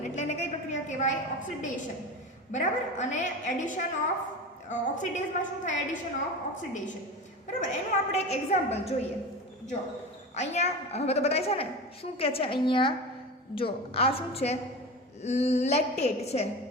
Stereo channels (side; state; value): both; normal; correlation 0.28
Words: એટલે એને કઈ પ્રક્રિયા કહેવાય? ઓક્સિડેશન. બરાબર. અને એડિશન ઓફ ઓક્સિડેઝમાં શું થાય? Addition of oxidation. બરાબર. એનું આપણે એક એક્ઝામ્પલ જોઈએ. જો અહીંયા હવે તો બતાય છે ને શું કહે છે અહીંયા? જો આ શું છે? લેક્ટેટ છે.